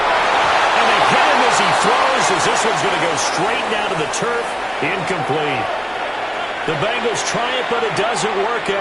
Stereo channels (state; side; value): identical; both; correlation 1.00